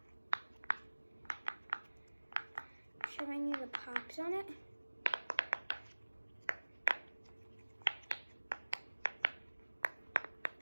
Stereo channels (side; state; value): both; inverted; correlation -1.00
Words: Showing you the pops on it.